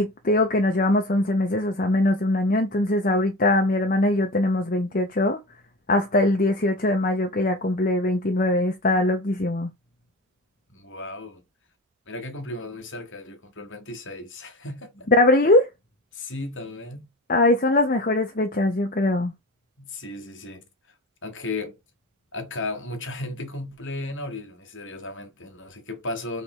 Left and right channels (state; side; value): normal; both; correlation 0.30